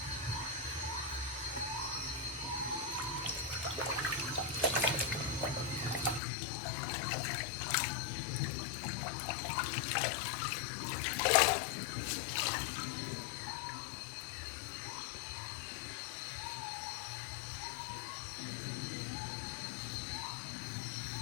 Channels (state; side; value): drops out; right; at 6.2 s